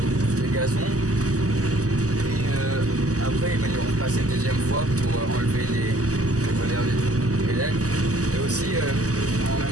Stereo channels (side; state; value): left; late; 0.66 ms